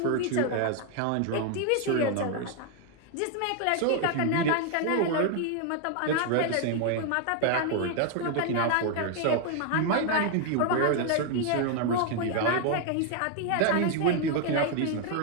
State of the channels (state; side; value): different; both; correlation 0.00